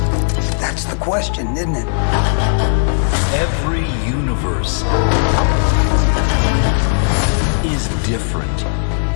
That's the question, isn't it? Every universe is different.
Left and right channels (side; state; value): right; silent; 69 dB below the other